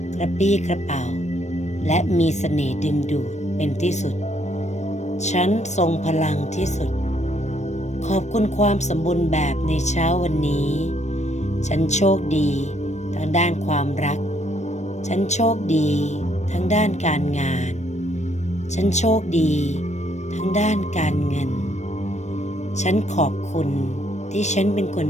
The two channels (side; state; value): right; late; 0.34 ms